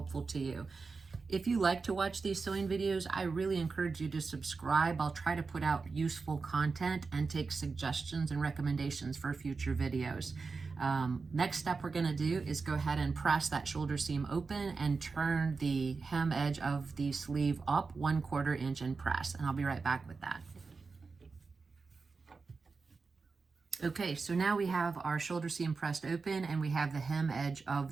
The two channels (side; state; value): left; quieter; 4.5 dB